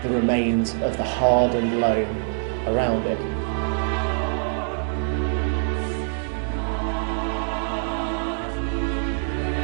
the remains of the hardened loam around it.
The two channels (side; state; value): left; silent; digital silence